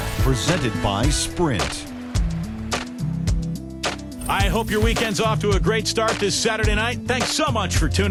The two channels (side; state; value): both; identical; correlation 1.00